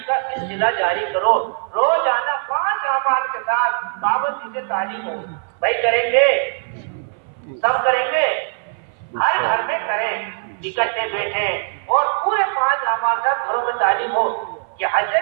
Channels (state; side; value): silent; left; 57 dB below the other